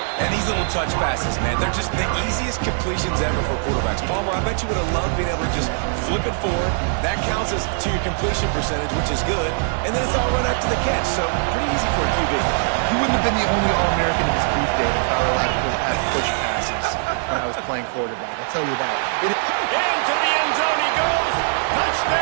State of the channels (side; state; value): left; silent; 65 dB below the other